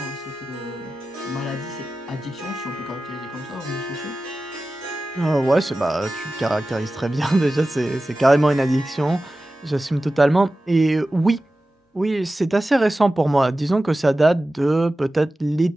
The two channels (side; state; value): both; normal; correlation 0.95